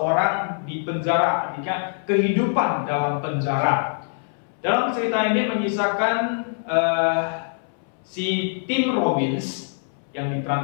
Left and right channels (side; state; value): right; silent; 63 dB below the other